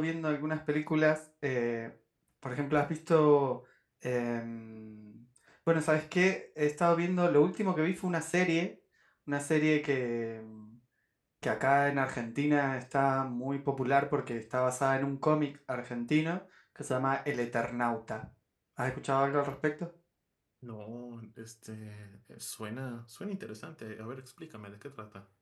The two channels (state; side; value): identical; both; correlation 1.00